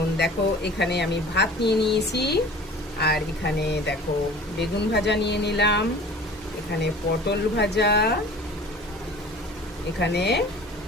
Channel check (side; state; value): both; normal; correlation 0.43